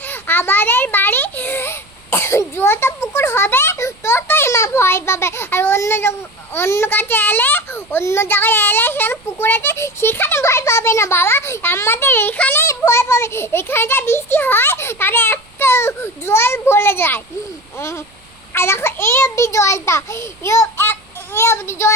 আমাদের বাড়ি যত পুকুর হবে ততই মা ভয় পাবে। আর অন্য কাছে এলে, অন্য জায়গায় এলে সেখানে পুকুর আছে, সেখানে ভয় পাবে না বাবা, আমাদের এখানেই ভয় পাবে। এখানে যা বৃষ্টি হয় তাহলে এত জল ভরে যায়। আর দেখো এই অবধি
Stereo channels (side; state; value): right; noise; rumble, 29 dB below the sound